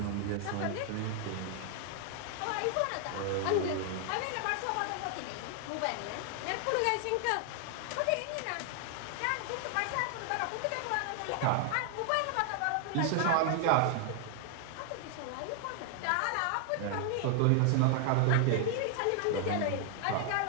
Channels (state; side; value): different; both; correlation 0.00